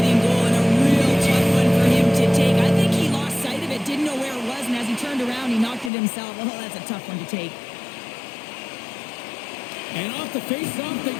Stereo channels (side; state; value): right; drops out; at 5.9 s